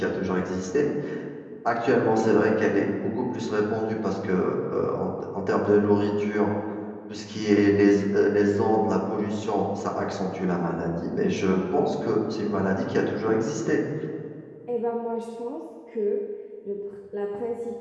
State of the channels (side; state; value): both; identical; correlation 1.00